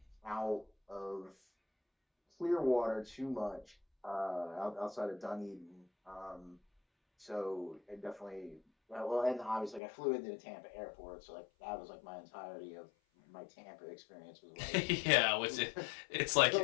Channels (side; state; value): right; drops out; at 9.8 s